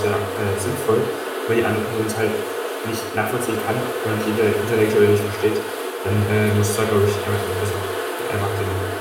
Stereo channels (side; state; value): both; identical; correlation 1.00